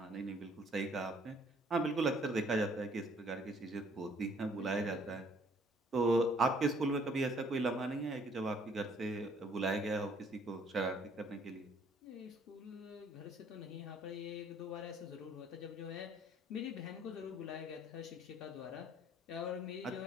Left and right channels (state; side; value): normal; both; correlation 0.62